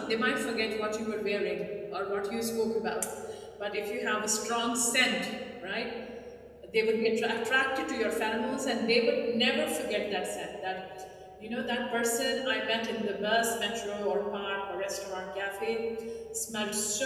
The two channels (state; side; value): identical; both; correlation 1.00